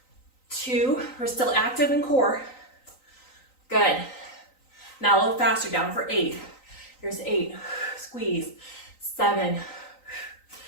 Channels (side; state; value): right; late; 3.9 ms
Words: 2. We're still active in core. Good. Now a little faster, down for 8. Here's 8. Squeeze. 7.